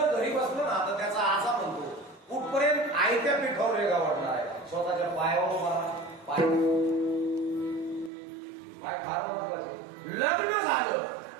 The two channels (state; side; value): drops out; left; at 8.1 s